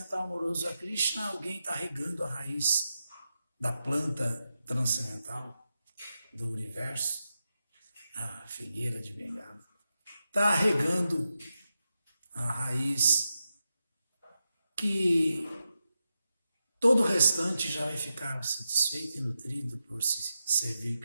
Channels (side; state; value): both; inverted; correlation -0.89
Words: amoroso a Krishna, alguém está regando a raiz da planta transcendental do universo, a figueira de Bengala. Está regando a raiz que todo o restante já vai ficar satisfeito e nutrido por se servir